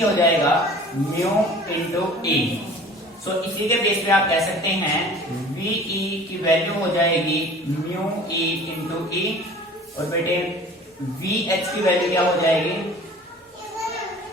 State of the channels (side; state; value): both; normal; correlation 0.45